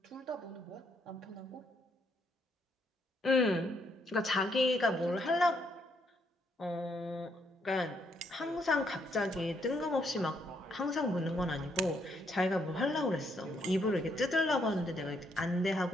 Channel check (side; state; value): both; normal; correlation 0.73